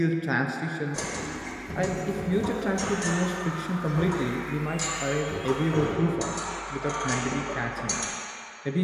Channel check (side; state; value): both; identical; correlation 1.00